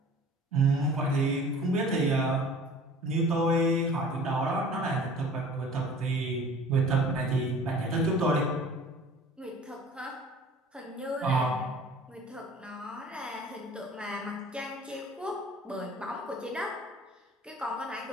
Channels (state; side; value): normal; both; correlation 0.46